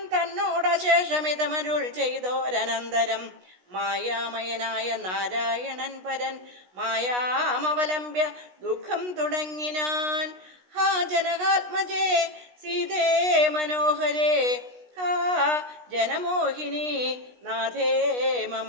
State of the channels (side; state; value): left; late; 16 ms